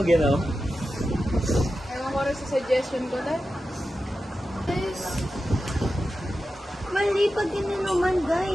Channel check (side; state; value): both; normal; correlation 0.92